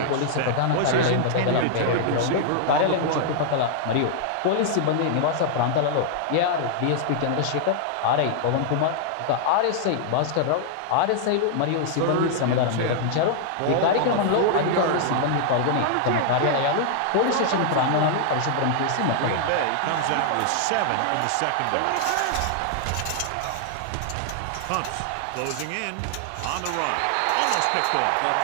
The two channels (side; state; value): both; different; correlation -0.01